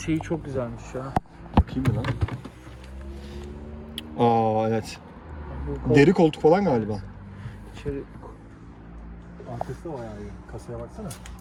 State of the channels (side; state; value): both; identical; correlation 1.00